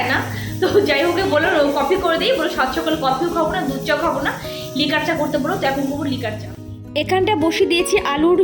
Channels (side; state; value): both; identical; correlation 1.00